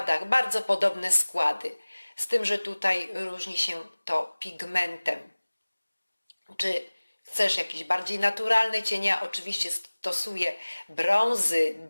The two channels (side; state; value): both; inverted; correlation -1.00